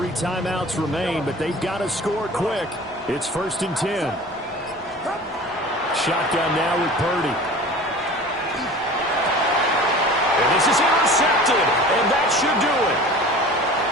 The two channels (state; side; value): normal; both; correlation 0.40